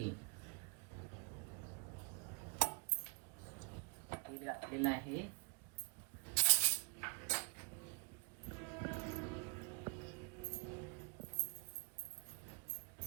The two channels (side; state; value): left; quieter; 34.9 dB